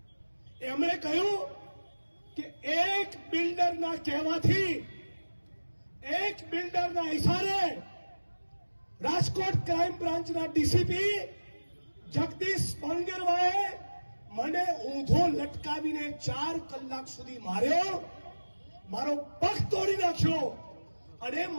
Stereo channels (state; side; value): inverted; both; correlation -1.00